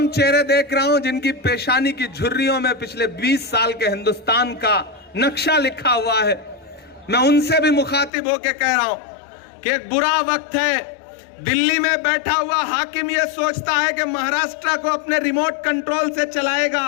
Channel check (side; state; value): right; drops out; at 8.1 s